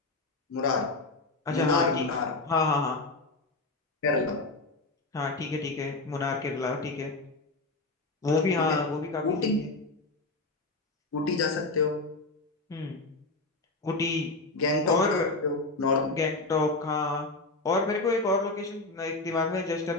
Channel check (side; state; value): right; quieter; 3.2 dB